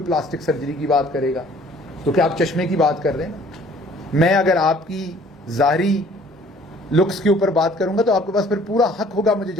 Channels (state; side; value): normal; both; correlation 0.55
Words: پلاسٹک سرجری کی بات کرے گا، تو کیا آپ چشمے کی بات کر رہے ہیں؟ میں اگر آپ کی ظاہری لکس کے اوپر بات کروں گا تو آپ کے پاس پھر پورا حق ہوگا مجھے